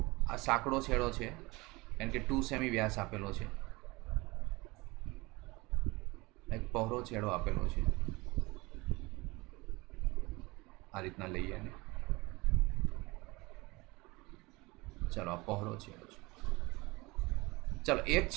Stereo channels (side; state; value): left; quieter; 23.3 dB